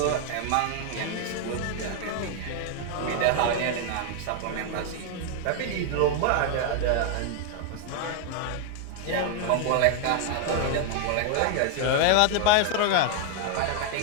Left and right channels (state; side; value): different; both; correlation 0.00